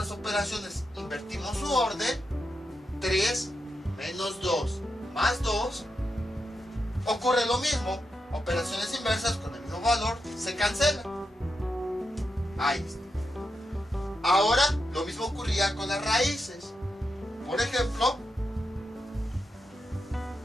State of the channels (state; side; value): normal; both; correlation 0.86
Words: operaciones invertimos su orden, 3 menos 2 más 2, ocurre lo mismo. Operaciones inversas con el mismo valor se cancelan. Ahí está. Ahora lo mismo ocurría con las raíces. Por ejemplo,